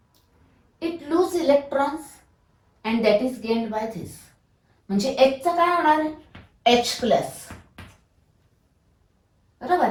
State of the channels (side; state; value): both; identical; correlation 1.00